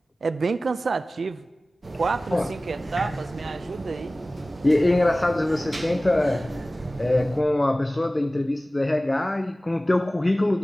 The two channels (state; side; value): normal; both; correlation 0.97